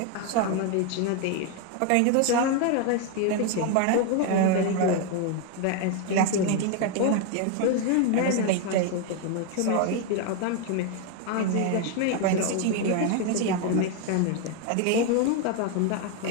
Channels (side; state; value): both; different; correlation 0.01